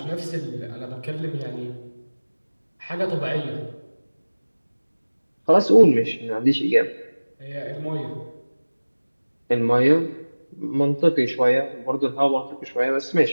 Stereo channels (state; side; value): inverted; both; correlation -1.00